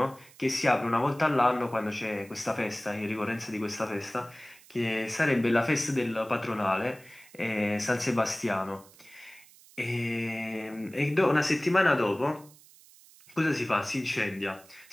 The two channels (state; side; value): noise; right; hiss, 24 dB below the sound